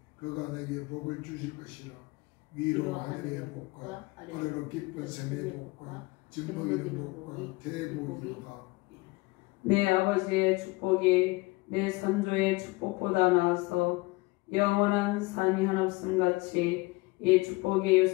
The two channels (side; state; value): right; quieter; 23.4 dB